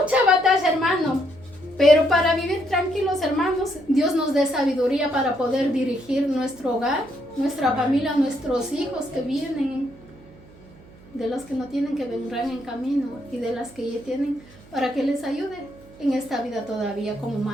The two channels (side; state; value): right; noise; hum, 23 dB below the sound